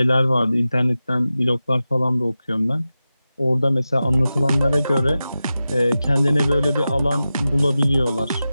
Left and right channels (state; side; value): inverted; both; correlation -0.94